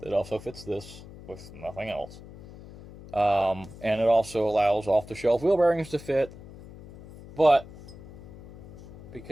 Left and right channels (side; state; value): left; noise; hum, 17 dB below the sound